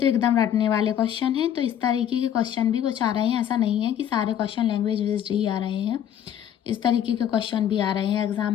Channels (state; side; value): quieter; right; 9.9 dB